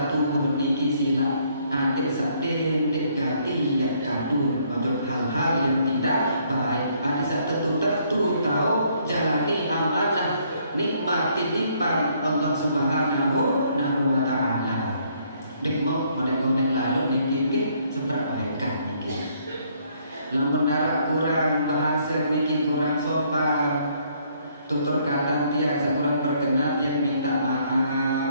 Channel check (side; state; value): both; inverted; correlation -0.67